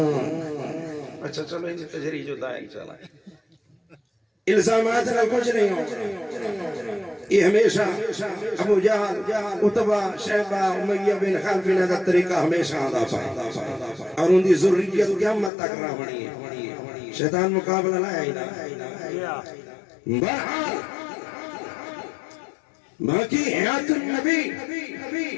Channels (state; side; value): drops out; right; at 15.5 s